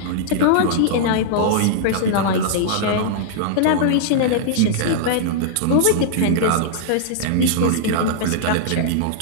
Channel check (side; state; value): both; different; correlation -0.02